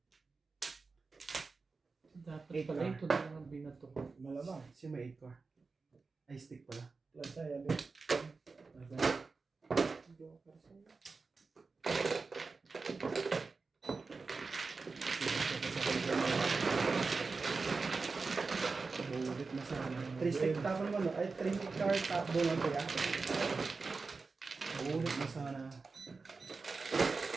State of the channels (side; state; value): left; quieter; 4.2 dB